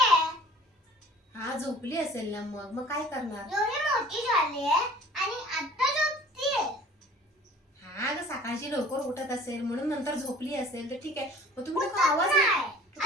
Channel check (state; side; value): normal; both; correlation 0.48